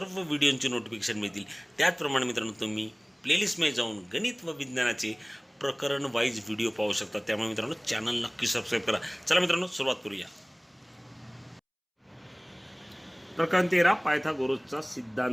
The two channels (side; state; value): both; identical; correlation 1.00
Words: व्हिडिओंची नोटिफिकेशन मिळतील. त्याचप्रमाणे मित्रांनो, तुम्ही प्लेलिस्टमध्ये जाऊन गणित व विज्ञानाचे प्रकरण वाईज व्हिडिओ पाहू शकता. त्यामुळे मित्रांनो, चॅनल नक्की सबस्क्राईब करा. चला मित्रांनो, सुरुवात करूया. प्रकरण 13, पायथागोरसचा